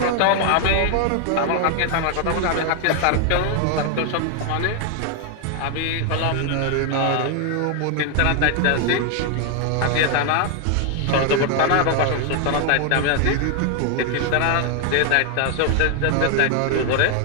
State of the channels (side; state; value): both; different; correlation 0.00